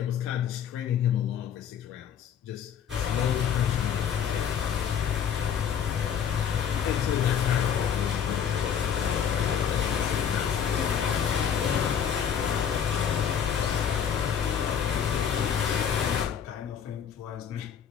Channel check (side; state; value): right; quieter; 8.2 dB